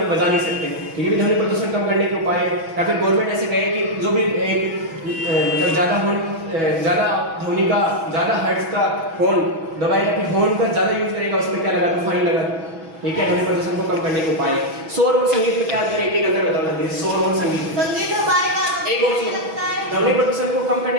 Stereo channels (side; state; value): left; late; 6.1 ms